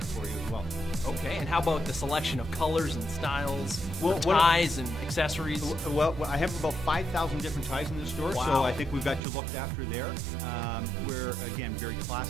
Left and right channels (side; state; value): left; drops out; at 9.2 s